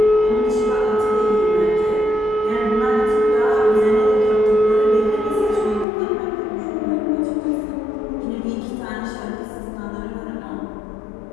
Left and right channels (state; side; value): drops out; right; at 5.9 s